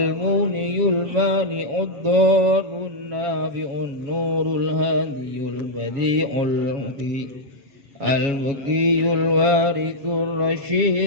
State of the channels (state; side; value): late; left; 7.2 ms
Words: الضار النافع النور الهادي البديع البقي الوارث